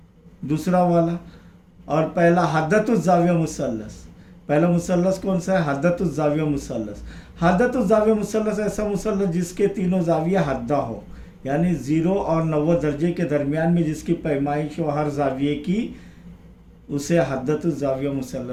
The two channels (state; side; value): identical; both; correlation 1.00